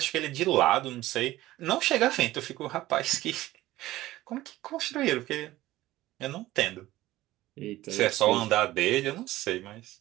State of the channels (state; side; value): quieter; left; 16.4 dB